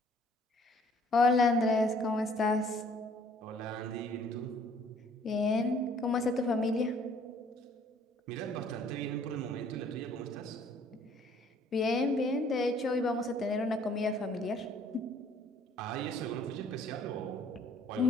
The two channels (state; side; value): normal; both; correlation 0.59